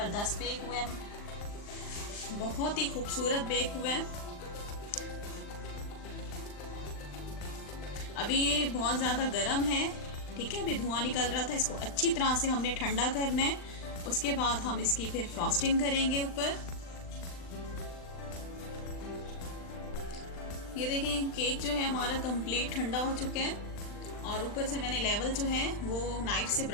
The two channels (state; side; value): late; right; 39 ms